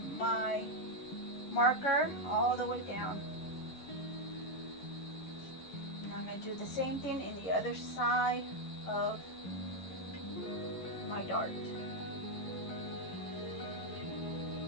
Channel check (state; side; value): late; right; 11 ms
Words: my marker all the way down. And I'm going to do the same thing in the other side of my dart.